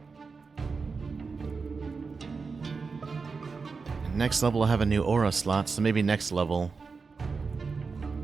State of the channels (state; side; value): quieter; left; 4.7 dB